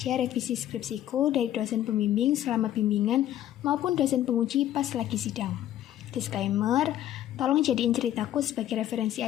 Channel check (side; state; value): right; quieter; 12.2 dB